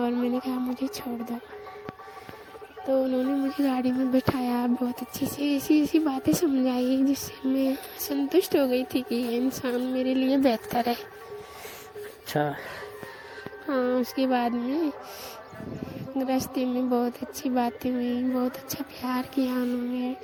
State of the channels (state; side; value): identical; both; correlation 1.00